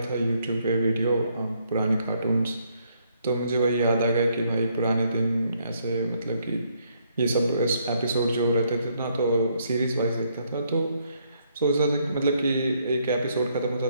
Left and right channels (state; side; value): inverted; both; correlation -0.71